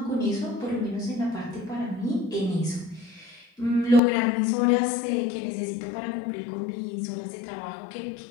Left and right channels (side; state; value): right; drops out; at 4.0 s